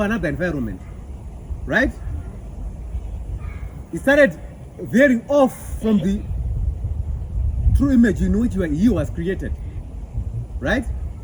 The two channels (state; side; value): identical; both; correlation 1.00